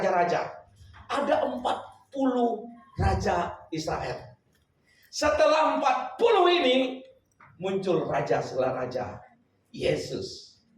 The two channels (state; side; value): identical; both; correlation 1.00